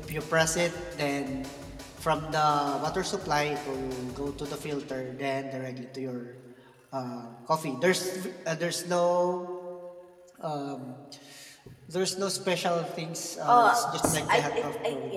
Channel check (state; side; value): identical; both; correlation 1.00